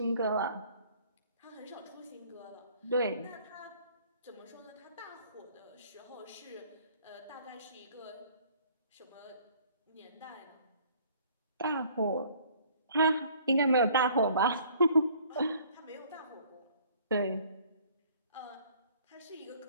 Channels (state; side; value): inverted; both; correlation -0.57